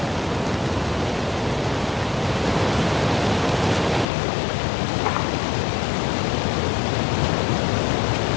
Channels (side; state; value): right; drops out; at 4.0 s